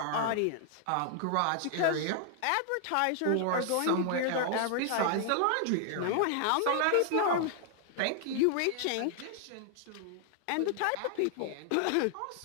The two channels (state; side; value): different; both; correlation 0.00